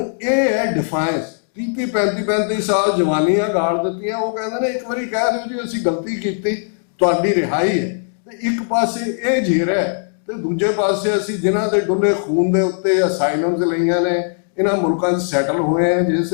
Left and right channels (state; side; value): silent; right; digital silence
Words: ये है डिफाइंस। 30 35 साल जवानियां गाड़ दित्तियां, वो कहते हैं एक बारी कह दिओ जी असीं गलती कीती, तुहाडी रिहाई है। ते एक पासे ये झेर है ते दूजे पासे असीं जिन्हां दे डुੱਲੇ खून दे उत्ते असाइलम्स लईआं ने, इन्हां मुल्कां 'ਚ सैटल होए हैं, जे